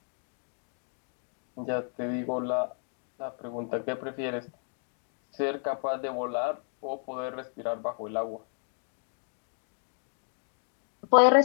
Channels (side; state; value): right; silent; 56 dB below the other